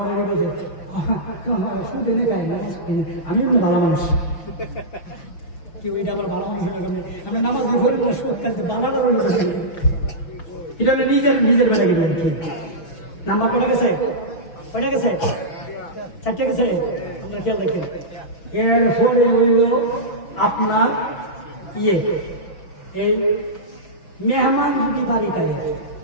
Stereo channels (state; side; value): late; right; 6.2 ms